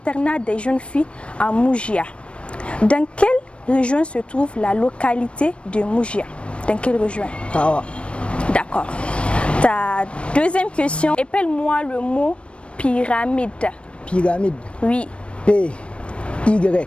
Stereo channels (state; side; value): late; right; 0.059 ms